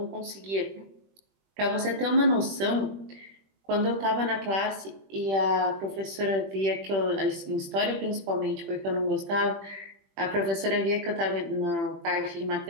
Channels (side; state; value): left; late; 21 ms